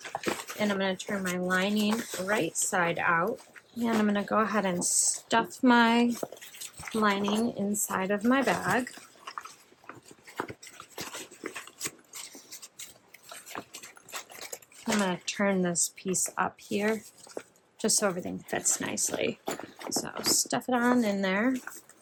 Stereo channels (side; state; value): both; identical; correlation 1.00